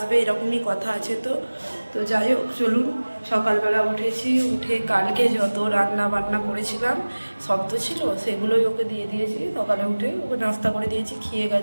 এরকমই কথা আছে। তো যাই হোক, চলুন। সকালবেলা উঠেছি, উঠে কালকে যত রান্না বান্না করেছিলাম সব তো ছিল, সেগুলোই ওকে দিয়ে দিয়েছি। সকালে উঠে ওকে নাস্তা করে দিয়েছি, খেয়ে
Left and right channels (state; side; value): inverted; both; correlation -1.00